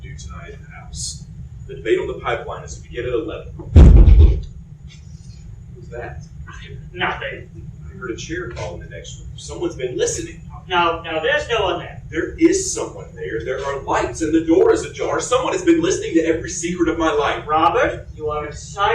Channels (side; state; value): both; identical; correlation 1.00